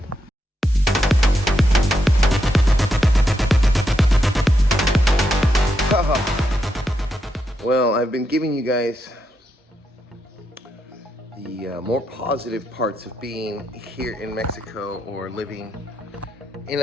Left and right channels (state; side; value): normal; both; correlation 0.82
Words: Well, I've been giving you guys the more positive parts of being here in Mexico or living in